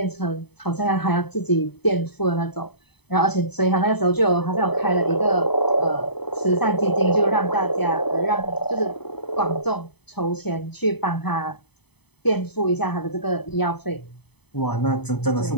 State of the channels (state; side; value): late; right; 0.98 ms